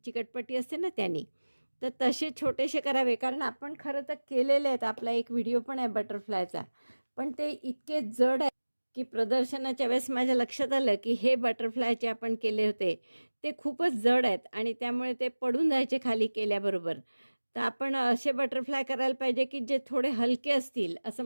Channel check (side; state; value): both; inverted; correlation -1.00